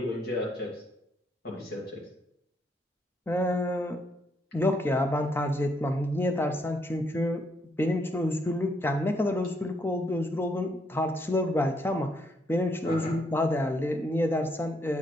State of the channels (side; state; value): both; normal; correlation 0.74